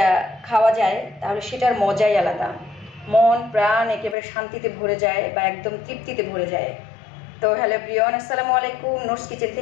খাওয়া যায়, তাহলে সেটার মজাই আলাদা। মন প্রাণ একেবারে শান্তিতে ভরে যায় বা একদম তৃপ্তিতে ভরে যায়। তো হ্যালো প্রিয়ন, আসসালামু আলাইকুম। নোটস কিচেন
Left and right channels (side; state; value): right; drops out; at 4.2 s